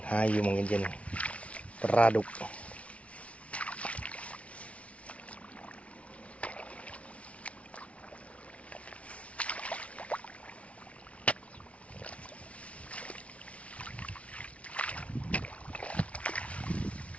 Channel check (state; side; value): late; right; 0.063 ms